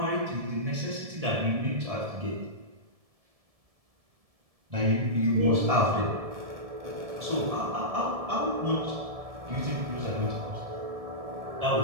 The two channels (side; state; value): left; late; 1.7 ms